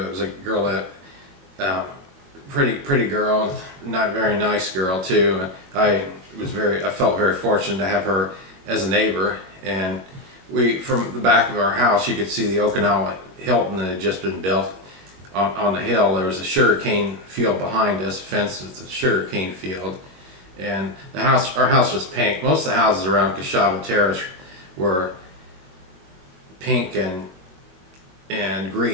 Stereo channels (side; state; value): left; late; 22 ms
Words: was a girl that pretty girl, not very nice girl too. I felt very fortunate to have her as a neighbor, and from the back of our house you could see the Okinawa Hilton that had just been built on the hill. There was a sugarcane field behind us, fenced with the sugarcane field, and our house was pink. Most of the houses around Kashaba Terrace were pink and